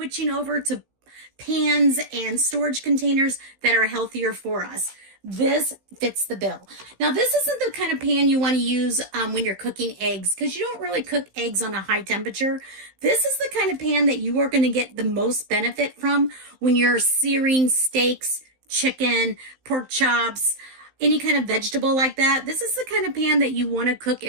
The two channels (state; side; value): late; left; 15 ms